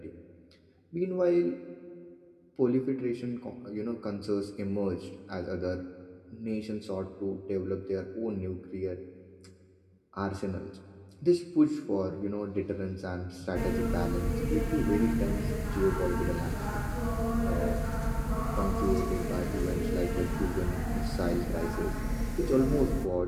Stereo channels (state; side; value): identical; both; correlation 1.00